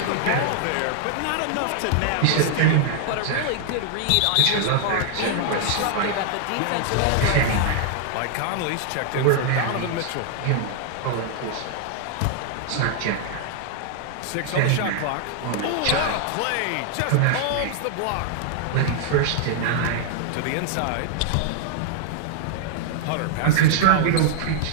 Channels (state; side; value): different; both; correlation -0.01